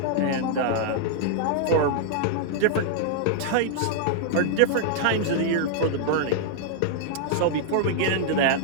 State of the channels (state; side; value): different; both; correlation -0.01